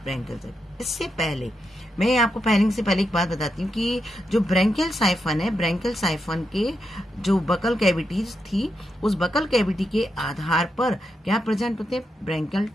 ब्रैंकियल सैक। इससे पहले मैं आपको फेरिंग से पहले एक बात बताती हूँ कि जो ब्रैंकियल साइफन है, ब्रैंकियल साइफन के जो बकल कैविटीज थी, उस बकल कैविटी के आधार पर क्या प्रेजेंट होते हैं? ब्रैंकियल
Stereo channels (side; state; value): both; normal; correlation 0.84